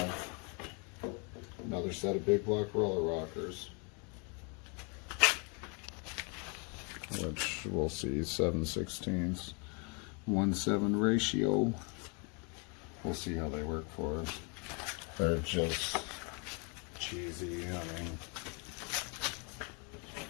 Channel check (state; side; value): quieter; right; 34.5 dB